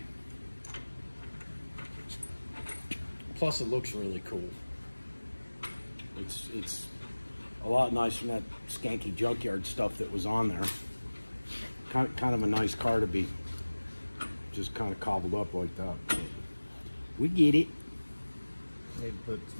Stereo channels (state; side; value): inverted; both; correlation -1.00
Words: Plus, it looks really cool. It's a lot nicer than that skanky junkyard stuff that was on there. Kind of a nice car to be just kind of cobbled up like that. But we get it. Need to put